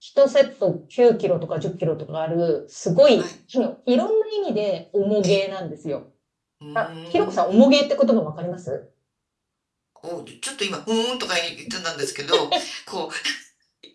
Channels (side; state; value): both; identical; correlation 1.00